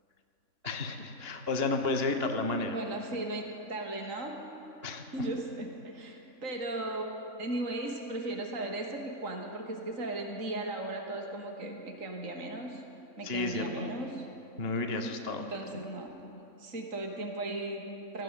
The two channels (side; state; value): left; late; 3.6 ms